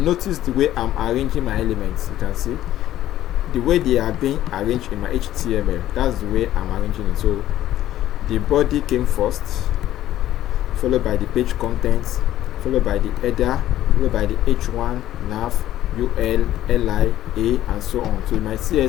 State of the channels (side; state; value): right; quieter; 13.2 dB